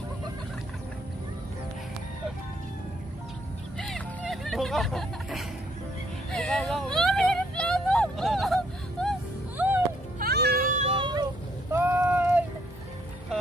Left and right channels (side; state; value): both; normal; correlation 0.69